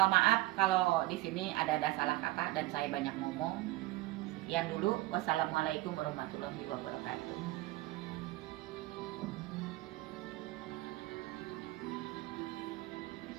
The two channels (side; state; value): left; quieter; 18.7 dB